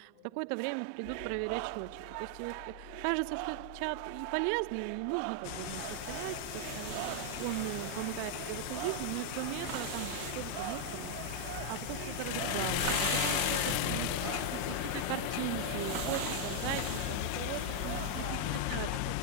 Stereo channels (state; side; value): different; both; correlation 0.00